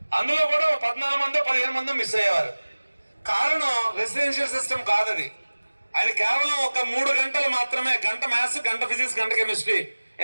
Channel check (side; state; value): both; inverted; correlation -1.00